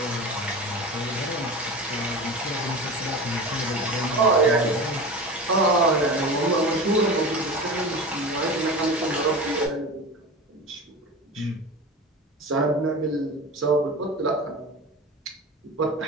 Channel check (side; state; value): both; normal; correlation 0.30